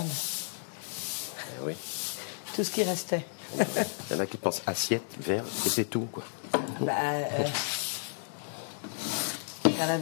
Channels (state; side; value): silent; right; digital silence